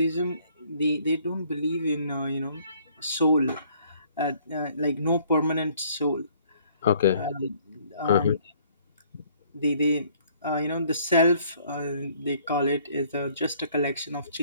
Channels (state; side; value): inverted; both; correlation -0.61